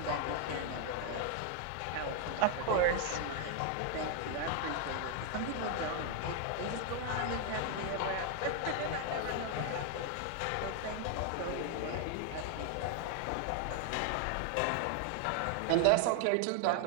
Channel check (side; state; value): both; different; correlation 0.00